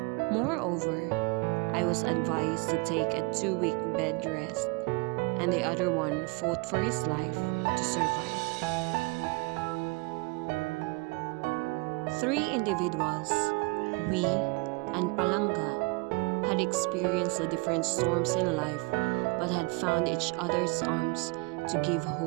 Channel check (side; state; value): left; quieter; 28.8 dB